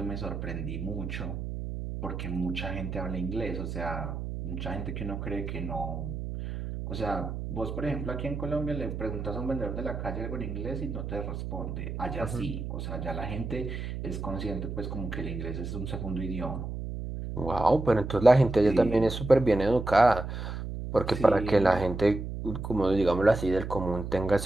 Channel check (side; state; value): right; noise; hum, 6 dB below the sound